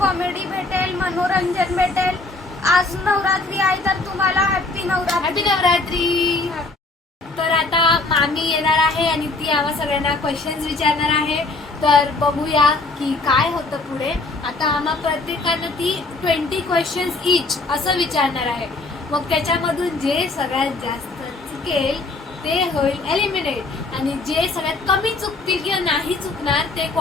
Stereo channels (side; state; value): right; quieter; 3.3 dB